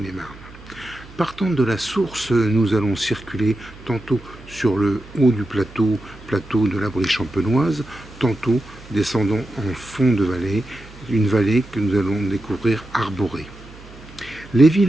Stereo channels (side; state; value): right; noise; hum, 20 dB below the sound